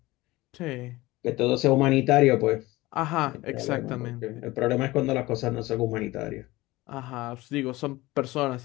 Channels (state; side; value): quieter; right; 19.7 dB